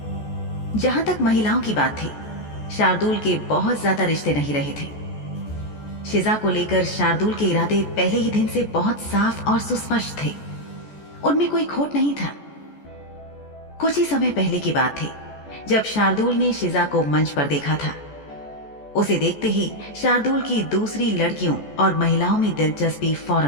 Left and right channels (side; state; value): right; late; 14 ms